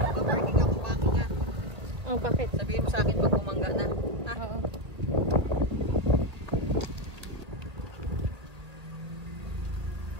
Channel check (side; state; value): left; late; 2.0 ms